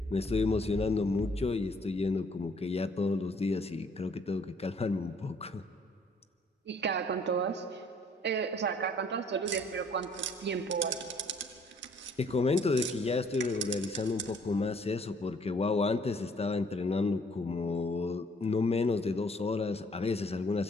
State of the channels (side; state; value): both; normal; correlation 0.61